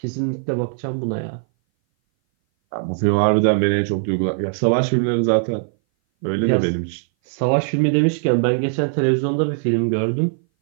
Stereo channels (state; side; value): silent; left; 59 dB below the other